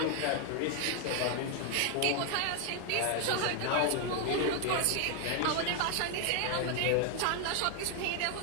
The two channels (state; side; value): different; both; correlation 0.00